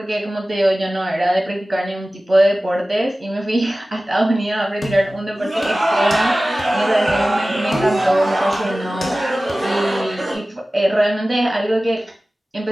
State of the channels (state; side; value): normal; both; correlation 0.97